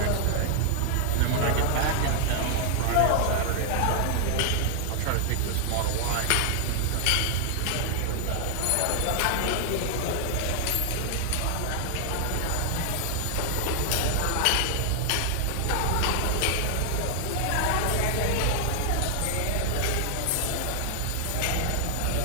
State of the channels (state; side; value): different; both; correlation 0.00